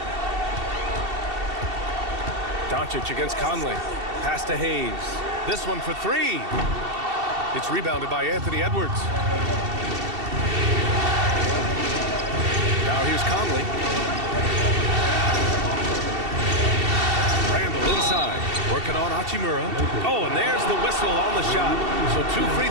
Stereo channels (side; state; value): left; late; 2.7 ms